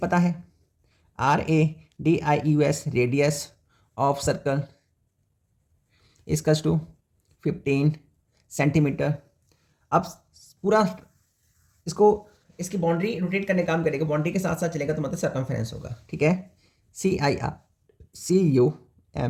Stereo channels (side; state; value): both; identical; correlation 1.00